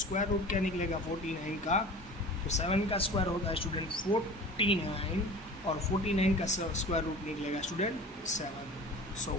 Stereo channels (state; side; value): normal; both; correlation 0.39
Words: रूट क्या निकलेगा 49 का? तो 7 का स्क्वायर होता है स्टूडेंट 49 और 49 का स्क्वायर रूट निकलेगा student 7। So